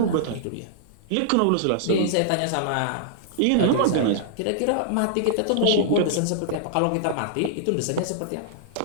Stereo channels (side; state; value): both; different; correlation -0.01